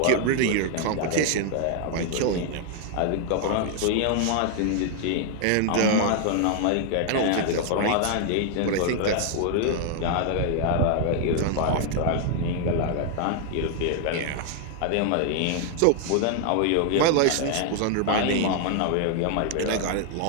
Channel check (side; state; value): both; different; correlation 0.00